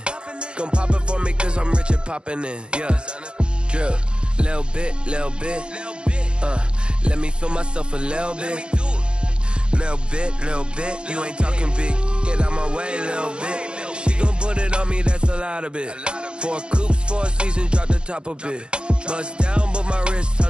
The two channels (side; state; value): left; late; 0.054 ms